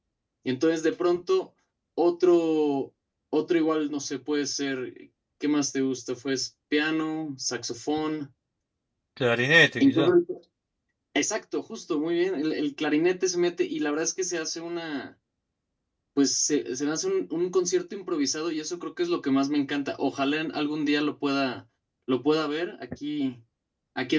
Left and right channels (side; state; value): both; identical; correlation 1.00